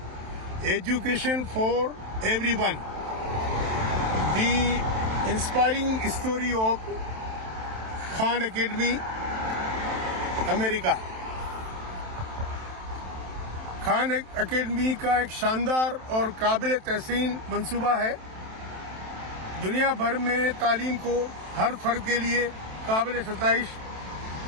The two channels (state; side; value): late; left; 27 ms